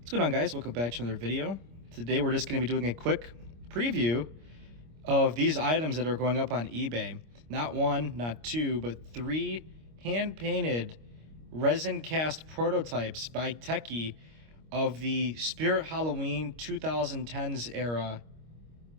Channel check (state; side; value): late; left; 25 ms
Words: What's going on, guys? Welcome back to another video. Today we're just going to be doing a quick preview of these items that are going up on eBay. Not one, not two, but three hand-painted resin cast prototypes by Tekky of the Spirit Halloween 2010s era